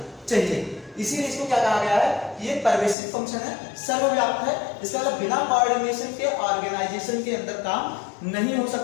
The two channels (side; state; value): right; drops out; at 3.0 s